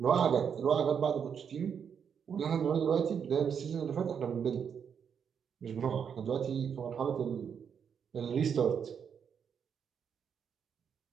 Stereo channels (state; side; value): quieter; left; 7.4 dB